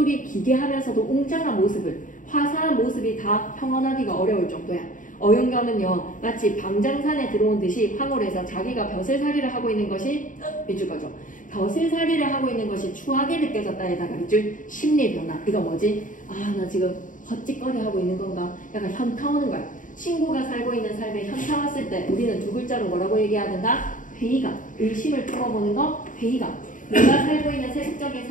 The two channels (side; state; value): right; late; 0.38 ms